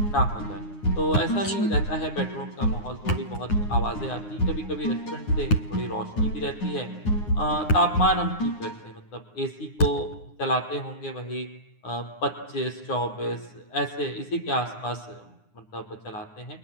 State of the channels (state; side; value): late; right; 9.7 ms